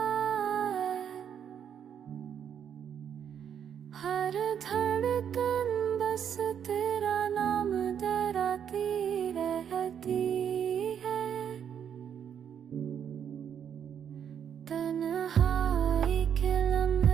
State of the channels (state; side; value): quieter; left; 8.5 dB